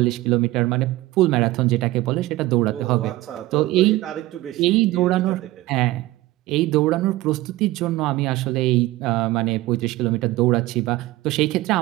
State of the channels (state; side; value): quieter; left; 17.9 dB